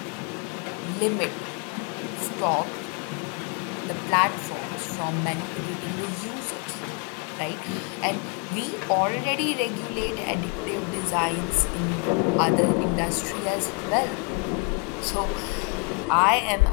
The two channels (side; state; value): right; quieter; 33.2 dB